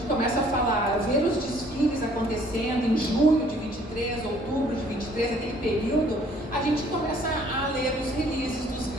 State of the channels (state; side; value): normal; both; correlation 0.59